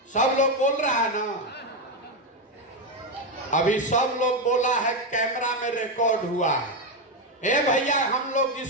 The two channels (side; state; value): both; normal; correlation 0.08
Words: सब लोग बोल रहा है ना? अभी सब लोग बोला है, कैमरा में रिकॉर्ड हुआ है। ए भैया, हम लोग